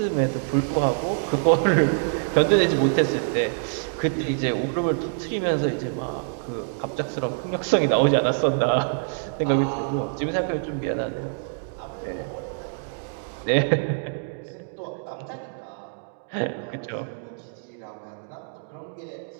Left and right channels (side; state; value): left; silent; digital silence